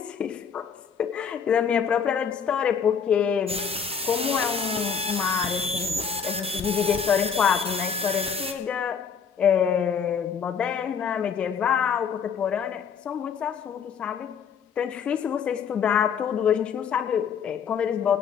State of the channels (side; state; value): right; quieter; 6.8 dB